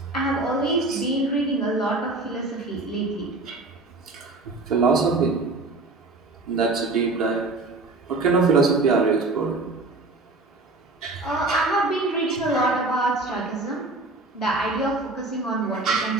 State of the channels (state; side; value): quieter; left; 3.2 dB